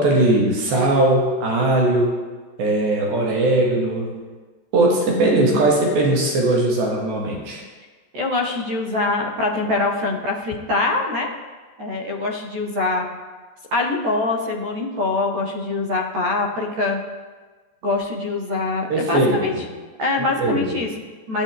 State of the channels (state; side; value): late; left; 14 ms